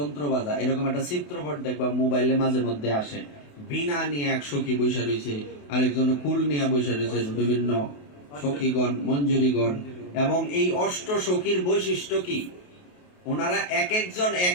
বাজায়। এরকম একটা চিত্রপট দেখবা মোবাইলে মাঝে মধ্যে আসে, বিনা নিয়ে এক সখী বৈশা রয়েছে, আরেকজন কুল নিয়ে বৈশা রয়েছে, বিভিন্ন সখীগণ মঞ্জুরিগণ। এবং এই অষ্ট সখীর বৈশিষ্ট্য কি? ওনারা এক একজন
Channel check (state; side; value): late; right; 28 ms